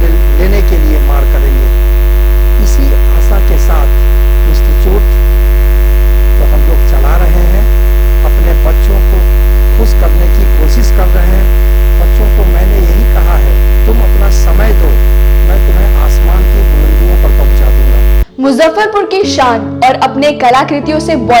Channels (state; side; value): identical; both; correlation 1.00